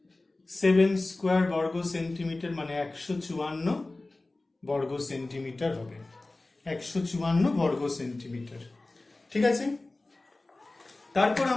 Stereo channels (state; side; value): quieter; right; 3.0 dB